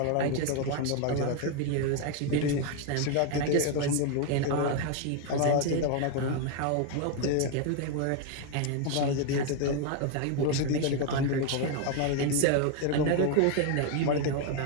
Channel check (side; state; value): both; different; correlation 0.01